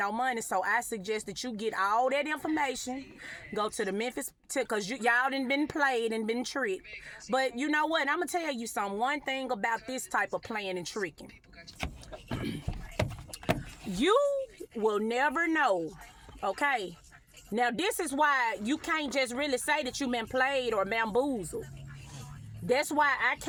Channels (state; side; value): identical; both; correlation 1.00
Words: money. So I suggest that you get all that information, go to the Memphis, because y'all done been played and been tricked. But you know what? I'm going to tell you something. One thing about this type of playing and tricking. You will never know, okay? Now, this is why you can't just really say that you've been played or bamboozled. That's why I